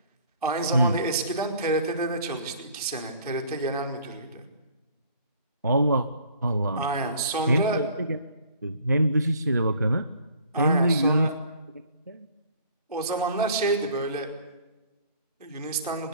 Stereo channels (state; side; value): inverted; both; correlation -0.55